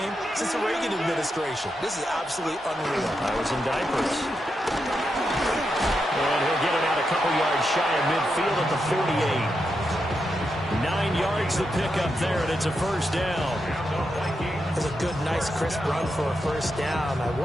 since the Reagan administration. This is absolutely unreal. I was in diapers. And he'll get it out a couple yards shy of midfield at the 48. 9 yards to pick up there, and it's a first down. It's a good, nice, crisp run for a first down. I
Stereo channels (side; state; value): both; normal; correlation 0.85